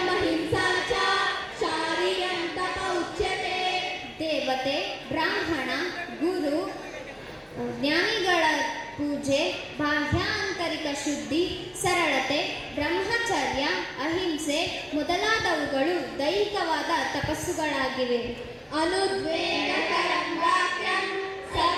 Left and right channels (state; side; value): identical; both; correlation 1.00